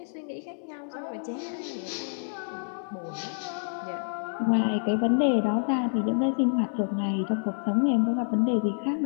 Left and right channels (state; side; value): silent; right; digital silence